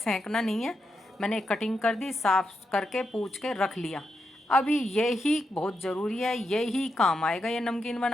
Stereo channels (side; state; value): both; normal; correlation 0.85